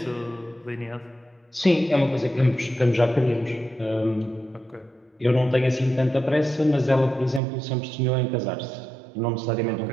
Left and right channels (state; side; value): drops out; left; at 7.4 s